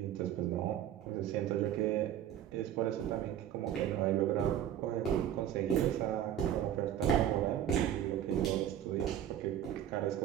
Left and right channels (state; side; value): quieter; left; 10.8 dB